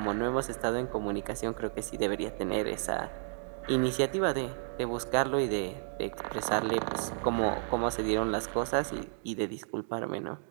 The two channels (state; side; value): silent; left; digital silence